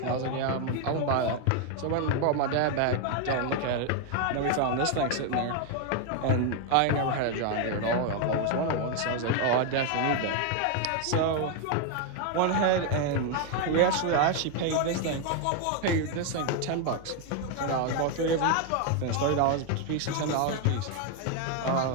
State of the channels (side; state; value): both; different; correlation 0.01